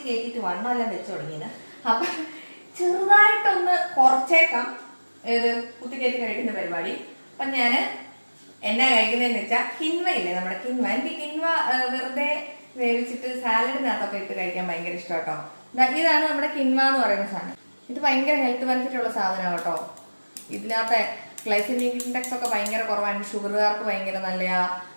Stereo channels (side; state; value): both; inverted; correlation -1.00